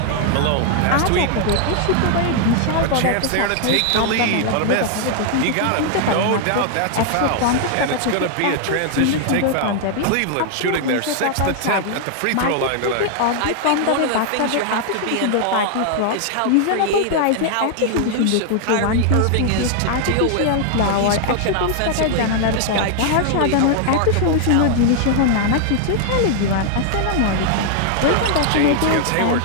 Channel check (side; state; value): both; different; correlation 0.00